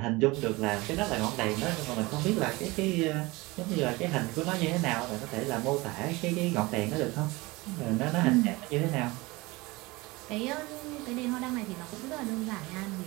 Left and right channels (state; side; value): quieter; left; 22.6 dB